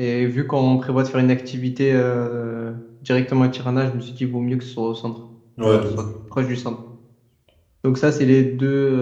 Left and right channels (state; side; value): identical; both; correlation 1.00